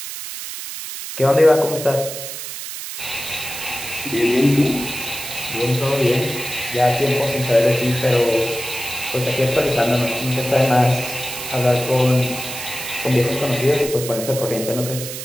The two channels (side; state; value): right; noise; hiss, 8 dB below the sound